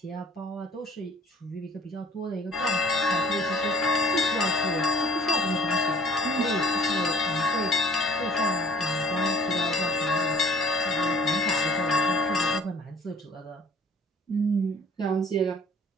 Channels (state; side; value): normal; both; correlation 0.52